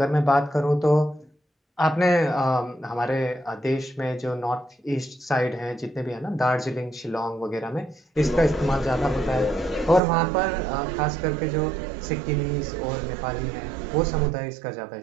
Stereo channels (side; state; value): left; drops out; at 10.0 s